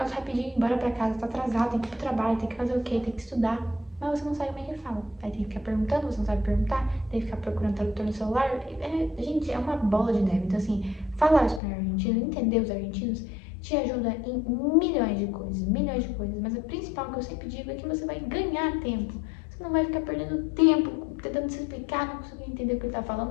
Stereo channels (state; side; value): drops out; right; at 11.6 s